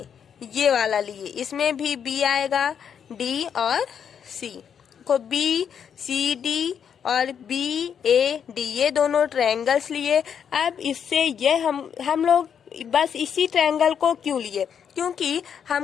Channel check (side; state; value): right; quieter; 7.8 dB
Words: ये वाला लिए, इसमें भी बी आएगा, डी और सी। को बी सी डी और बी ए डी ये दोनों ट्रायंगल्स लिए। अब इससे ये हम लोग बस इसी ट्रायंगल को क्यों लिए, क्योंकि